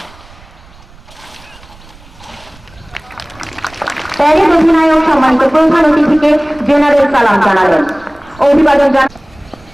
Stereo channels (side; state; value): right; noise; rumble, 25 dB below the sound